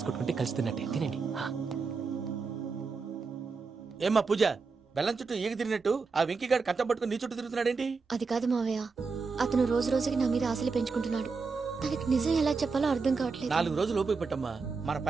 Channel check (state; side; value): quieter; left; 4.7 dB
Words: కొట్టుకుంటే కలిసి తిన్నట్టే. తినండి. ఏమ్మా పూజ, బెల్లం చుట్టూ ఈగ తిరిగినట్టు ఆ వెంకీగాడు కట్టం పట్టుకుని నీ చుట్టూ తిరుగుతున్నాడేంటి? అది కాదు మావయ్య, అతను రోజు రోజుకి నా మీద ఆశలు పెంచుకుంటున్నాడు. తనకి నిజం ఎలా చెప్పాలో అర్థం కావట్లేదు. 4 రోజులు ఓపిక పట్టమ్మా, మన